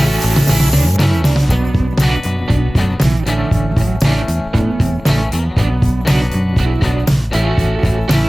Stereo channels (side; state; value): both; normal; correlation 0.97